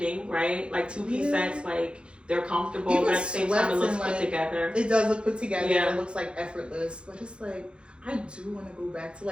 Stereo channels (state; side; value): late; left; 0.056 ms